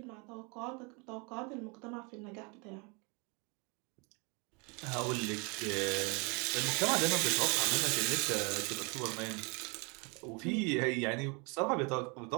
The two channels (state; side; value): quieter; left; 31.4 dB